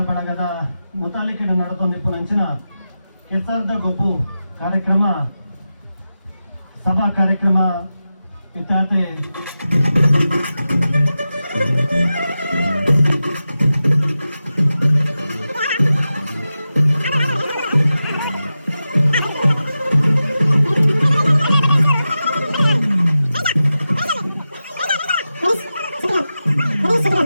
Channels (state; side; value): inverted; both; correlation -0.92